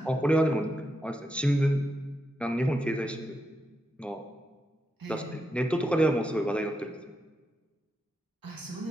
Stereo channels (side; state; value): both; normal; correlation 0.85